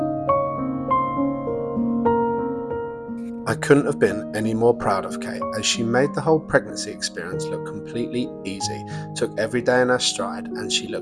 I couldn't have been any more proud of Kate, as she made the whole pregnancy experience look completely easy, took every day in her stride, and she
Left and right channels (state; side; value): identical; both; correlation 1.00